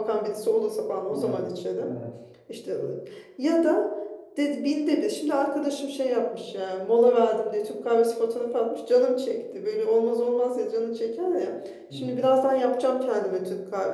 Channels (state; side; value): identical; both; correlation 1.00